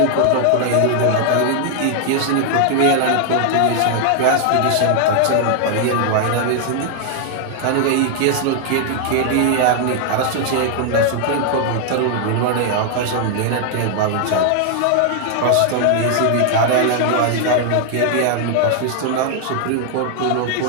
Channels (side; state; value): both; different; correlation 0.00